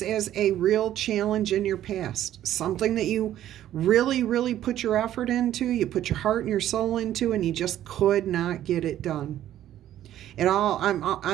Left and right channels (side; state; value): left; quieter; 12.2 dB